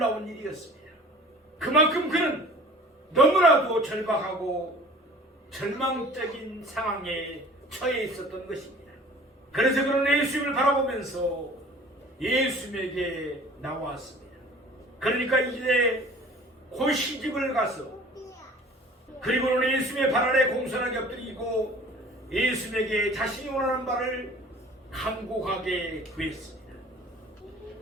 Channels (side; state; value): both; normal; correlation 0.46